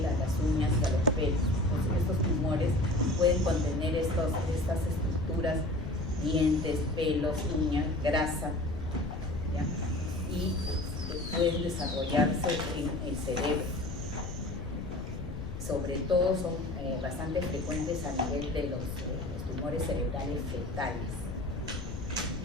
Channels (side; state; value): left; noise; rumble, 8 dB below the sound